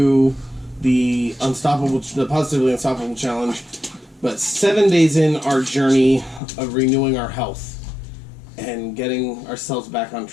the Positively Unstoppable Challenge, but 7 days in our journey of renewing our health and getting ourselves back on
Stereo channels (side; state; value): right; drops out; at 6.4 s